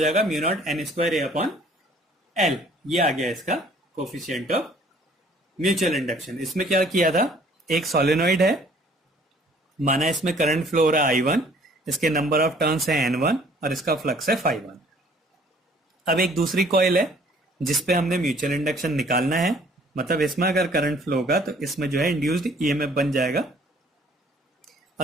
mu naught N square A upon L, ये आ गया इसका कोफिशिएंट ऑफ म्यूचुअल इंडक्शन। इसमें क्या किया था, एक सोलेनोइड है, माना इसमें करंट फ्लो हो रहा है I1, इसके नंबर ऑफ टर्न्स है N1 और इसका फ्लक्स है φ1। अब एक दूसरी कॉइल है जिसपे हमने म्यूचुअल इंडक्शन निकालना है, मतलब इसमें अगर करंट फ्लो होगा तो इसमें जो है इंड्यूस्ड ईएमएफ बन जाएगा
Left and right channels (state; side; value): normal; both; correlation 0.57